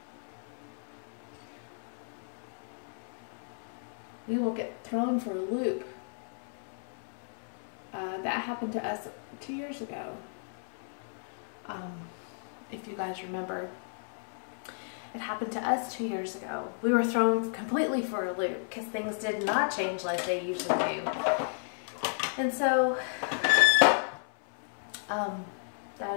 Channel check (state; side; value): silent; right; 56 dB below the other